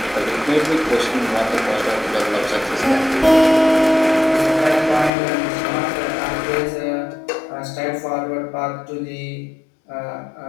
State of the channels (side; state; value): right; drops out; at 5.1 s